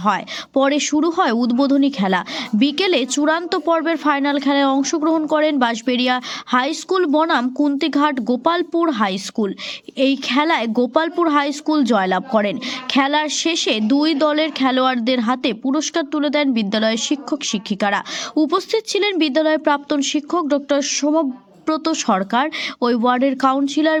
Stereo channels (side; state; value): both; identical; correlation 1.00